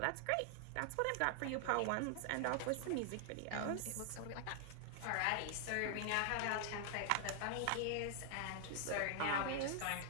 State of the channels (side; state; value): both; different; correlation 0.00